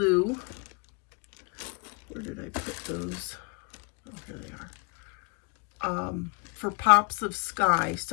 Where did I put those? Oh, here they are. For pops of sky.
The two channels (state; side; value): quieter; right; 34.4 dB